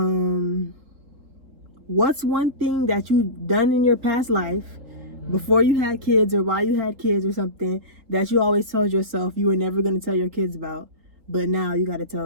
What's one thing that you've done in your past life before you had kids or while you had kids or something that you always told yourself you were never gonna tell your kids about, but now you gotta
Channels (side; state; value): left; late; 3.8 ms